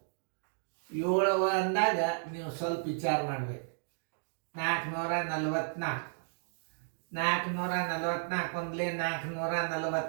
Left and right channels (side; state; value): left; silent; digital silence